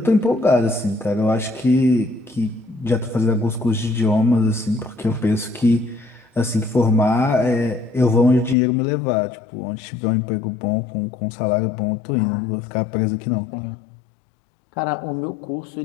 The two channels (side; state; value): right; drops out; at 8.6 s